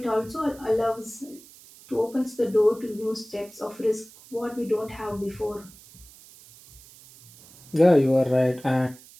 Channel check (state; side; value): noise; right; hiss, 22 dB below the sound